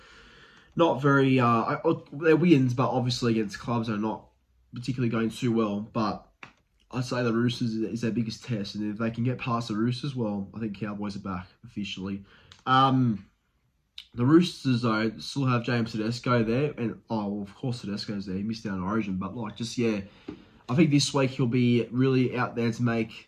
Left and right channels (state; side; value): identical; both; correlation 1.00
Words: not very, they're wins, but obviously against clubs that are not particularly going too well. But I'd say the Roosters is their biggest test, and if they can get past the Roosters, well, I think Cowboys are back officially. The Roosters, though, still have James Tedesco there, and of course Tedesco's there. He missed out on Origin, but I think this week he'll be really out there to